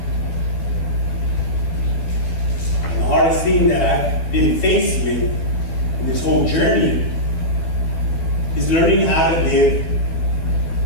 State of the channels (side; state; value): right; late; 12 ms